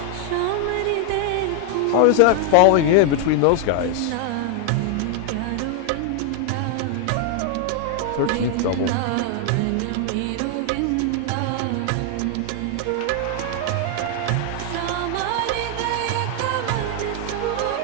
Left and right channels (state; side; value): different; both; correlation 0.00